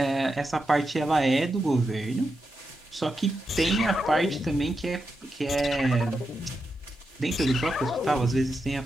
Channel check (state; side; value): normal; both; correlation 0.87